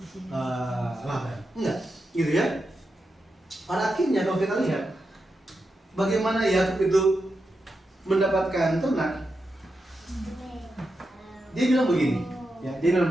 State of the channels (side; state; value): both; normal; correlation 0.88